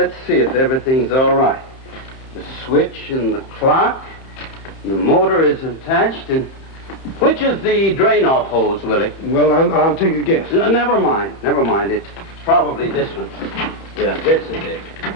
see if everything's all right. The switch and the clock, and the motor is attached, and which is the drain-off hose, Willie? Well, I'll take a guess. Never mind. Never mind. It's probably this one. Yeah, this is it.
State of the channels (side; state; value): right; late; 31 ms